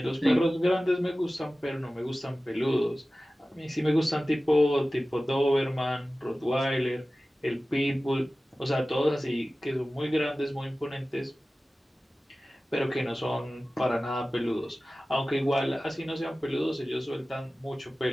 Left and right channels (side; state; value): both; normal; correlation 0.96